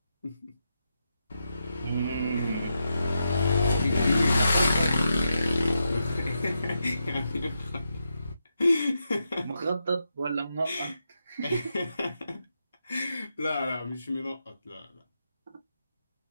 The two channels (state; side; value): inverted; both; correlation -0.85